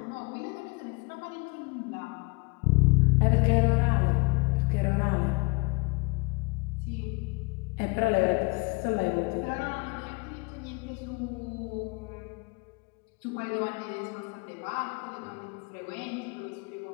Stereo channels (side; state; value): right; quieter; 29.5 dB